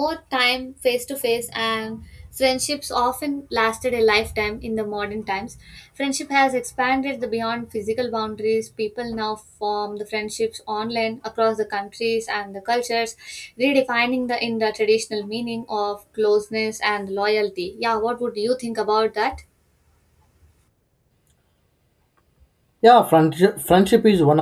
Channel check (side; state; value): both; identical; correlation 1.00